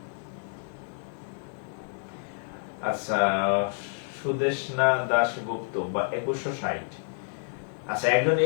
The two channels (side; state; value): right; silent; digital silence